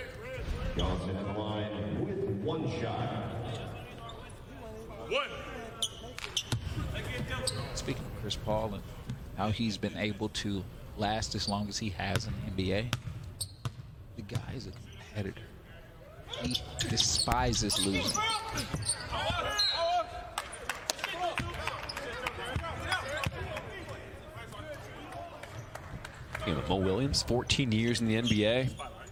Johnson at the line with one shot. Speaking of Chris Paul and how he's been able to last as long as he has in the NBA, the guy is a competitor. He despises losing. You know, Mo Williams, 14 years in the NBA.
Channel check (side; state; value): both; identical; correlation 1.00